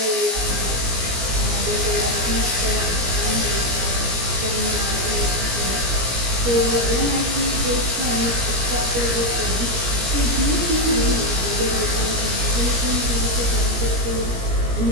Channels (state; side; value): late; left; 17 ms